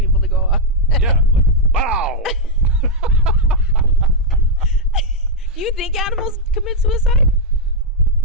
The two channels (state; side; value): normal; both; correlation -0.02